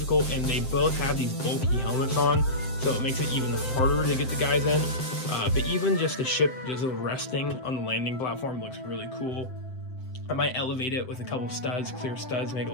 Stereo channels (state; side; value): late; right; 7.7 ms